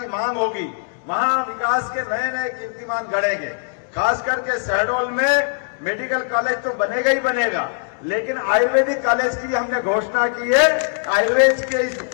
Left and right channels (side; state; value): right; silent; digital silence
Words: मांग होगी वहां विकास के नए नए कीर्तिमान गढ़ेंगे। खास करके शहडोल में मेडिकल कॉलेज तो बनेगा ही बनेगा, लेकिन आयुर्वेदिक कॉलेज की भी हमने घोषणा की है। आयुर्वेद के इस